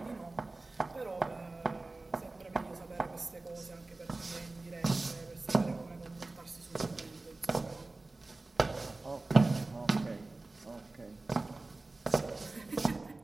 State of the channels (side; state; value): left; quieter; 3.2 dB